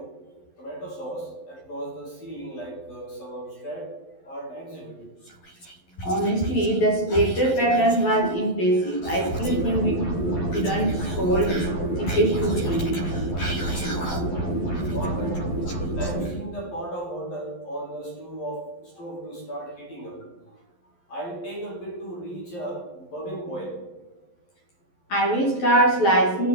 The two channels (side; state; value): right; late; 11 ms